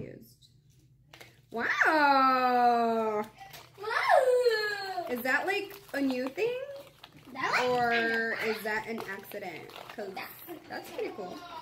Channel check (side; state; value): both; identical; correlation 1.00